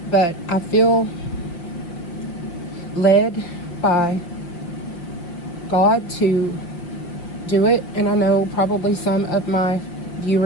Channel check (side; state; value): right; late; 5.6 ms